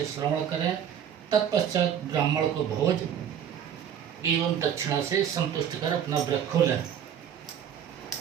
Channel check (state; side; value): quieter; left; 9.0 dB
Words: श्रवण करें। तत्पश्चात ब्राह्मण को भोज एवं दक्षिणा से संतुष्ट कर अपना व्रत खोलें।